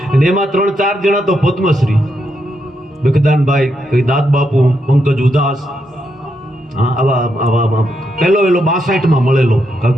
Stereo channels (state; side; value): normal; both; correlation 0.81